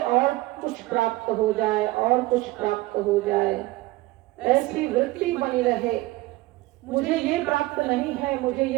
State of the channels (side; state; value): left; quieter; 19.4 dB